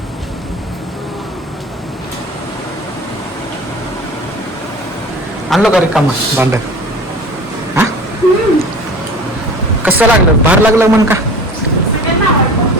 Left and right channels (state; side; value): normal; both; correlation 0.39